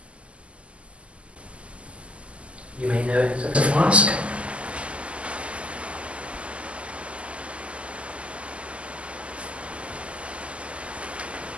You may know it as a flask.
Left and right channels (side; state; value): left; late; 0.057 ms